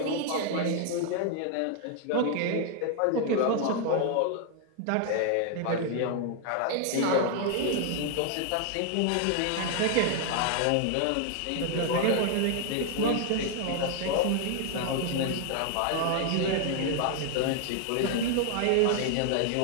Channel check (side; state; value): both; different; correlation 0.00